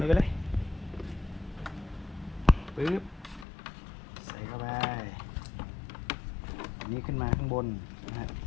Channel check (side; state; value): right; drops out; at 3.5 s